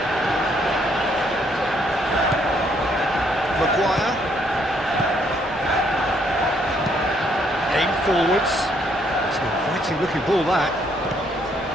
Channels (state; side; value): normal; both; correlation 0.70